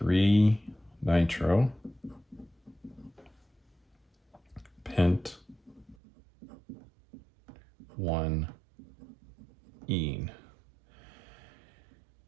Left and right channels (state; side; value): drops out; left; at 6.0 s